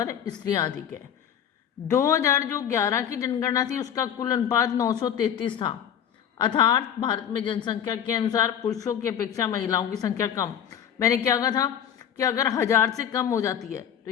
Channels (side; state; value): right; quieter; 9.1 dB